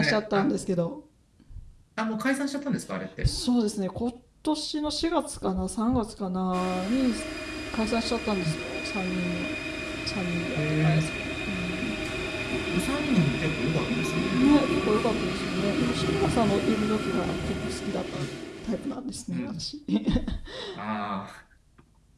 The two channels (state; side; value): identical; both; correlation 1.00